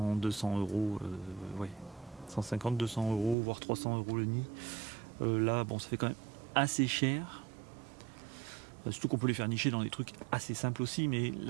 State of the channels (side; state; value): left; drops out; at 3.4 s